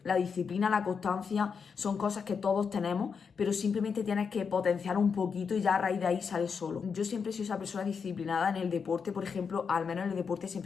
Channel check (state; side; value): quieter; right; 6.0 dB